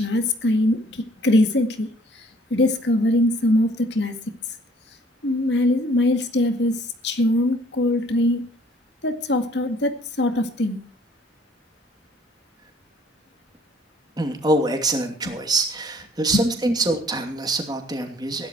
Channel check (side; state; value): both; normal; correlation 0.58